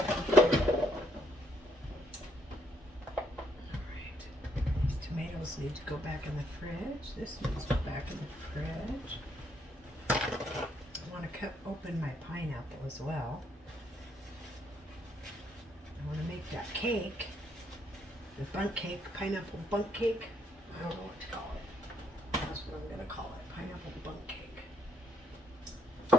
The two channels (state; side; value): normal; both; correlation 0.71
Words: Need to go back in the fridge. This needs to go back in the fridge. I want to cut open my pineapple as well. I want to make that cake, the bundt cake, pineapple bundt cake. I don't know what to call it. That's what I'm going to call it, pineapple bundt cake.